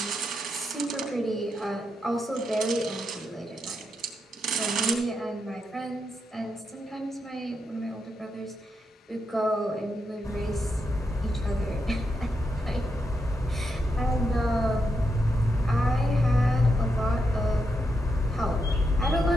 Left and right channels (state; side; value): normal; both; correlation 0.83